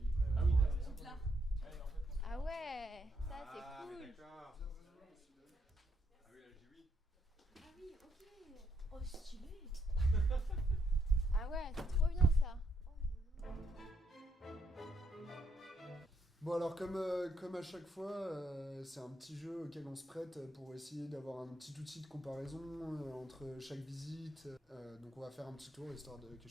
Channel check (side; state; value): both; normal; correlation 0.76